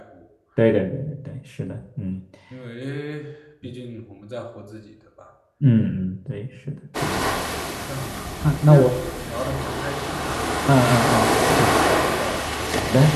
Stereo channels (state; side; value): identical; both; correlation 1.00